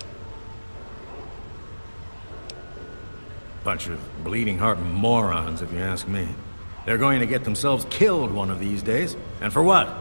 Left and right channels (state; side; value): inverted; both; correlation -1.00